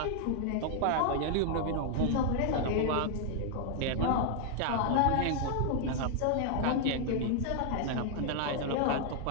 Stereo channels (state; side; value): different; both; correlation 0.00